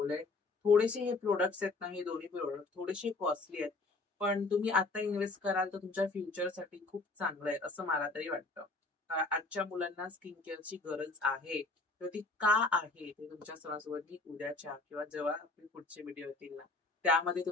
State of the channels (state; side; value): quieter; right; 3.5 dB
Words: थोडेसे हे प्रोडक्ट्स आहेत ना, हे दोन्ही प्रोडक्ट थोडेसे कॉस्टली आहेत. पण तुम्ही आता इन्व्हेस्ट कराल तर तुमच्या फ्युचरसाठी खूप चांगलं आहे, असं मला तरी वाटतं. आजच्या मुलांना स्किन केअरची गरज आहे. तर ती का आहे ते तुमच्या सर्वांसोबत मी उद्याच्या किंवा जेव्हा आपले पुढचे व्हिडिओ येतील ना, त्यामध्ये